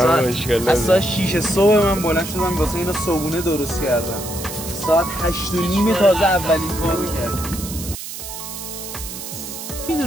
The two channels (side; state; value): right; noise; hiss, 9 dB below the sound